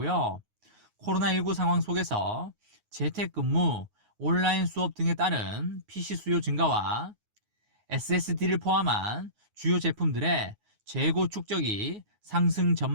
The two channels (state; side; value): late; left; 9.5 ms